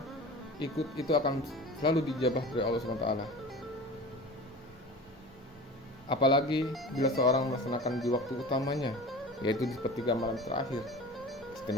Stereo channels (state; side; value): normal; both; correlation 0.36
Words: itu akan selalu dijabah dari Allah Subhanahu wa Ta'ala. Apalagi bila seorang melaksanakan di waktu utamanya, yaitu di sepertiga malam terakhir.